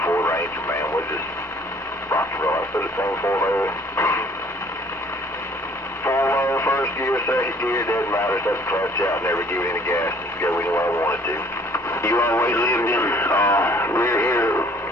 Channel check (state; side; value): normal; both; correlation 0.57